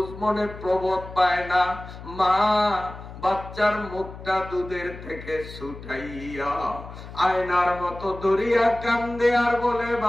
মনে প্রবোধ পায় না। মা বাচ্চার মুখটা দুধের থেকে ছুটাইয়া আয়নার মতো ধরিয়া কান্দে আর বলে,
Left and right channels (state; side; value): noise; left; hum, 14 dB below the sound